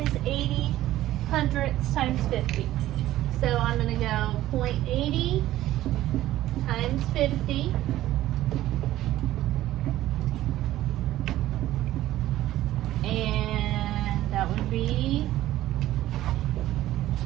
80 hundredths times 50. So I'm going to go 0.80 times 50. And that would be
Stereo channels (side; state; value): left; quieter; 14.6 dB